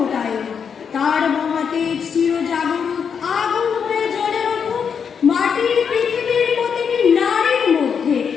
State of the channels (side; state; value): right; quieter; 6.8 dB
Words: তার মহাতেজ চিরজাগরুক আগুন হয়ে জ্বলে উঠুক মাটির পৃথিবীর প্রতিটি নারীর মধ্যে।